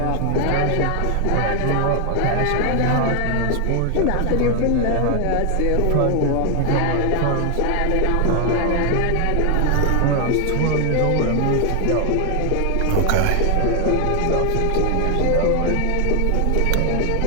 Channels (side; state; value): both; different; correlation 0.00